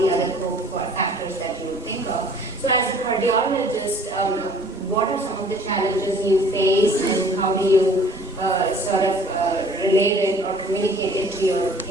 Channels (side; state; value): both; normal; correlation 0.52